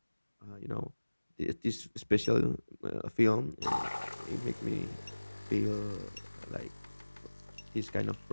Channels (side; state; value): both; inverted; correlation -1.00